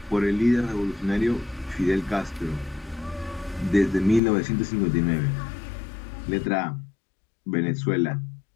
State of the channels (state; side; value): drops out; right; at 4.2 s